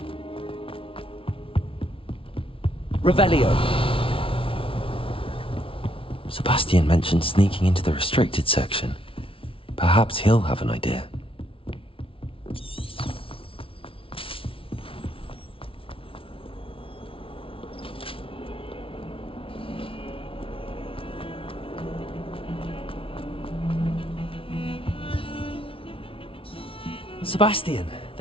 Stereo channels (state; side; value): late; right; 0.26 ms